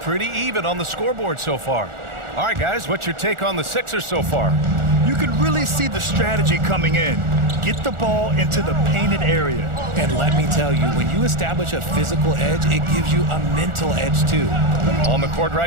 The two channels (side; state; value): left; late; 1.4 ms